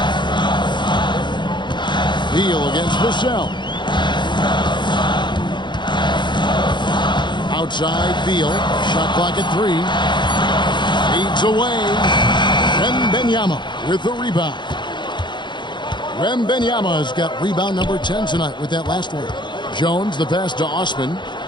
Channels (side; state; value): right; late; 0.22 ms